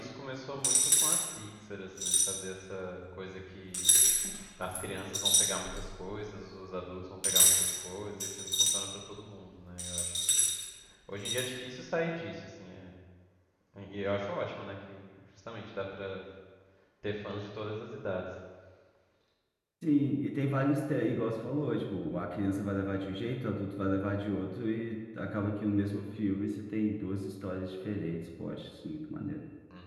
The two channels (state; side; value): identical; both; correlation 1.00